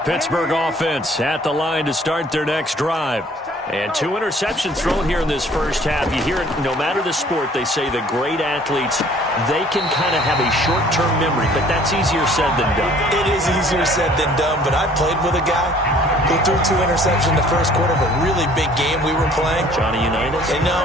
Pittsburgh offense at the line to start their next drive. And 2 interceptions thrown here in this first half. You hear it, no matter the sport, they say the great athletes, they can kind of have a short-term memory, but that's easier said than done. It is easier said than done, but I played with a guy who threw 2 interceptions in the first quarter of a really big game we were playing. Johnny Unitas? And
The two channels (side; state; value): both; normal; correlation 0.55